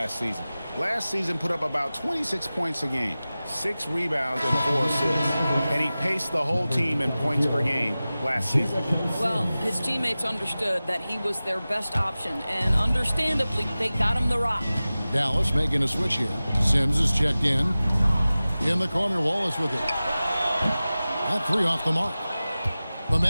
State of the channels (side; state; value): both; inverted; correlation -0.96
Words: season. Last season put up about 26 points a game, 6 rebounds and 4 assists. And he paced the whole team in points per game last season. Well, his teammates understood that he was their best option, and understandably, they got him the rock. Dallas making a switch here. Sims is checked in. In the corner, Wallace with it. That 3 off the mark. The